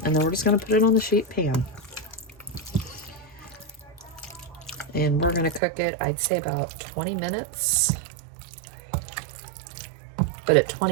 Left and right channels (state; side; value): drops out; left; at 5.6 s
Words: and then we're just gonna put it on the sheet pan. And we're gonna cook it, I'd say about 20 minutes. But at